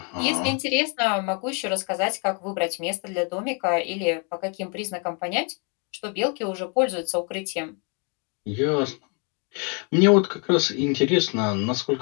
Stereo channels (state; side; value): quieter; right; 36.3 dB